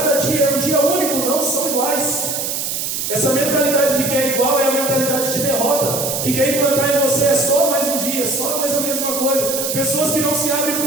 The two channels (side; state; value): right; noise; hiss, 2 dB below the sound